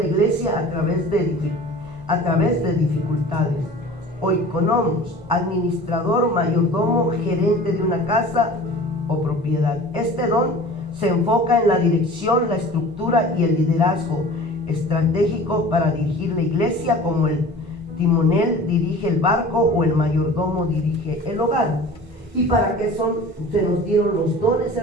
iglesia a través de dificultades. Oikonomos, administrador, mayordomo, gerente de una casa o propiedad. Este don se enfoca en la dirección, la estructura y el liderazgo estratégico para dirigir la iglesia, como el timonel dirige el barco o el mayordomo dirige el hogar. ¿Y para qué se nos dieron los dones,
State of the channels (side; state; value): both; normal; correlation 0.42